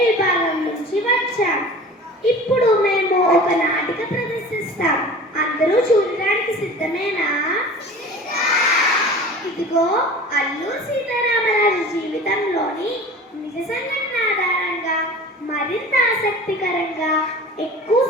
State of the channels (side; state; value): both; normal; correlation 0.40